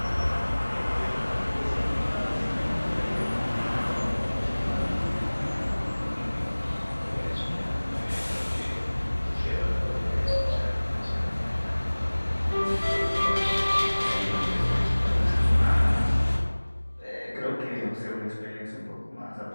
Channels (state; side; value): inverted; both; correlation -1.00